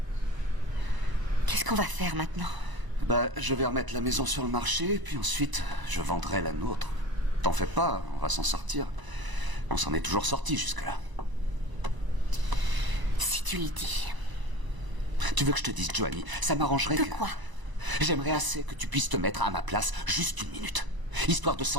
Qu'est-ce qu'on va faire maintenant? Bah, je vais remettre la maison sur le marché, puis ensuite, je vendrai la nôtre. T'en fais pas, on va s'en sortir. On s'en est toujours sorti jusque-là. Si tu le dis. Tu veux que je te dise, Joanie, ça m'arrangerait De que... quoi? J'aimerais assez que tu puisses te mettre à ma place juste une minute. Histoire de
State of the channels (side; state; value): left; late; 1.0 ms